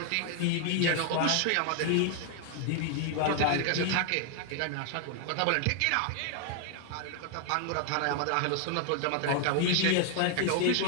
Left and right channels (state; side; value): different; both; correlation 0.00